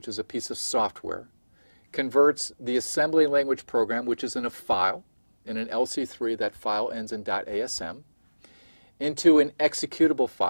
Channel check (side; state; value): both; inverted; correlation -1.00